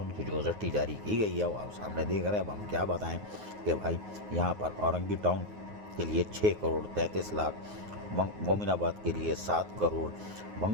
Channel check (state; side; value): late; left; 9.5 ms